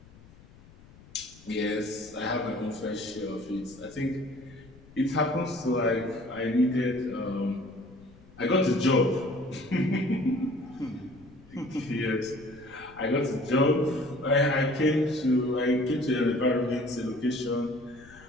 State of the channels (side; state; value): left; noise; rumble, 23 dB below the sound